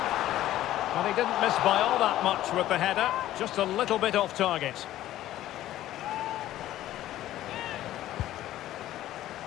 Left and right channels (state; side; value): quieter; right; 13.9 dB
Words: Well, he didn't miss by all that much with the header. Just a little bit off target.